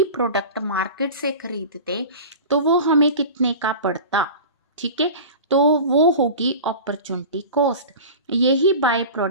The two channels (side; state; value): both; inverted; correlation -0.34